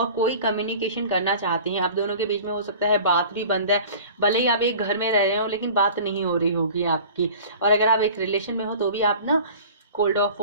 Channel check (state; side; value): inverted; both; correlation -0.42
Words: कोई कम्युनिकेशन करना चाहते हैं। आप दोनों के बीच में हो सकता है बात भी बंद है, भले ही आप एक घर में रह रहे हो लेकिन बात नहीं हो रही होगी आपकी। और अगर आप एक रिलेशन में हो तो भी आप ना कोल्ड ऑफ